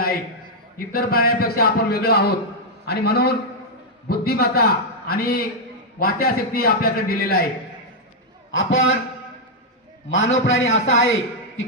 आहे. इतर प्राण्यांपेक्षा आपण वेगळं आहोत आणि म्हणून बुद्धिमत्ता आणि वाचाशक्ती आपल्याकडे दिलेला आहे. आपण मानव प्राणी असा आहे की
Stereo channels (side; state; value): both; normal; correlation -0.03